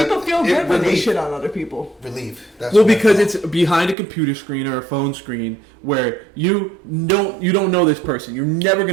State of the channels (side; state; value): left; drops out; at 4.0 s